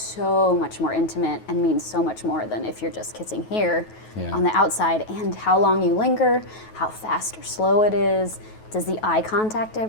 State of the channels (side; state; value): right; late; 9.3 ms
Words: much more intimate and means so much more than if you're just kissing here Yeah. on the outside. And how long you linger, how fast or slow it is, does the eye contact